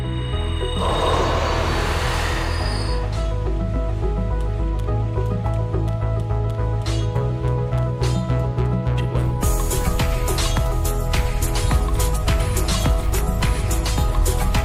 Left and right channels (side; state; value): both; identical; correlation 1.00